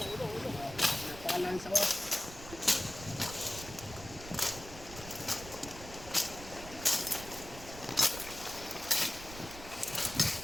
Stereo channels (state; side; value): noise; right; rumble, 14 dB below the sound